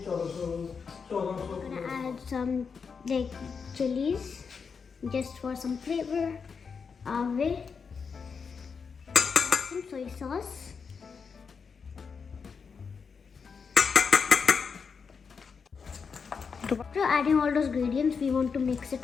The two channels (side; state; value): right; quieter; 5.7 dB